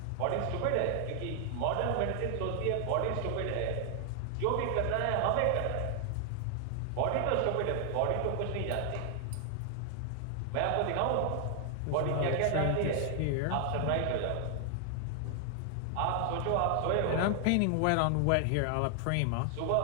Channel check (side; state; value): both; different; correlation 0.00